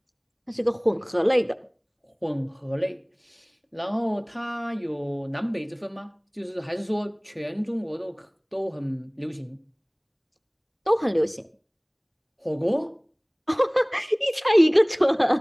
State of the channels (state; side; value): identical; both; correlation 1.00